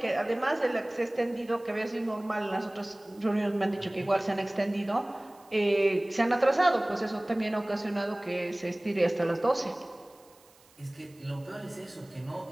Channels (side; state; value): right; noise; hiss, 29 dB below the sound